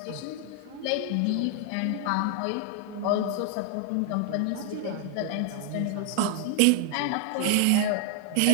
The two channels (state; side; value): different; both; correlation 0.00